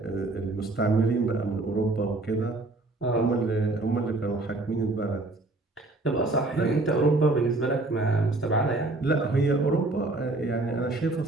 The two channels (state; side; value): quieter; left; 3.0 dB